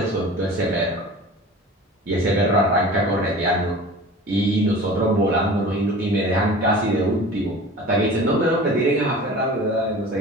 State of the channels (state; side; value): normal; both; correlation 0.39